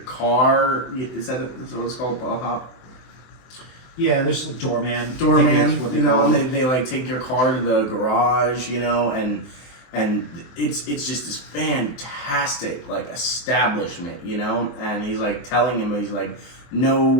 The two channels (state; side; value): late; right; 23 ms